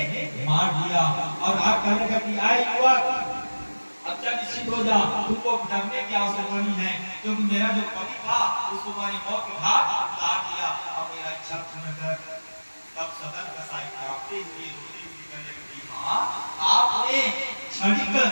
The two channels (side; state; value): both; inverted; correlation -1.00